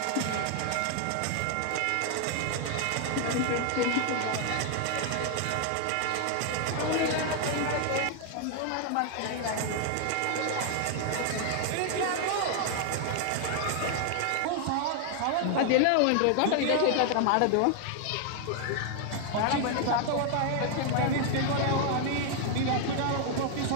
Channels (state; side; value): different; both; correlation 0.00